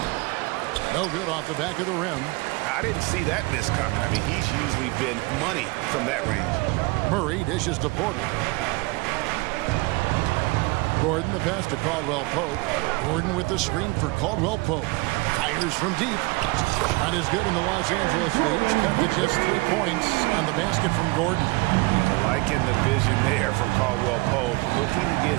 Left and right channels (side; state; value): left; quieter; 24.7 dB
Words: No good off the back of the rim. I didn't see that miss coming. I mean, he's usually been money from that range. Murray dishes to Porter. Gordon the pass to Caldwell Pope. Gordon with the screen for Caldwell Pope. Fires from deep. Shot is good in the Los Angeles leads. Cut to just 3 points on the basket from Gordon. Liking the vision there from Caldwell Pope. Looking to get